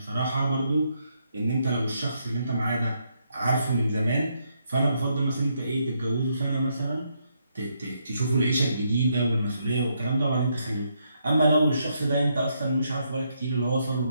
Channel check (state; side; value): inverted; both; correlation -0.77